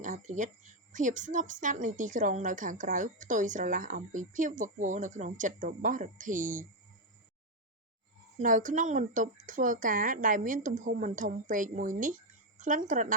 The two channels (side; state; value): both; normal; correlation 0.04